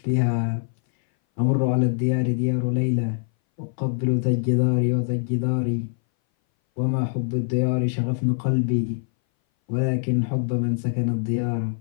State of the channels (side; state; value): right; silent; 60 dB below the other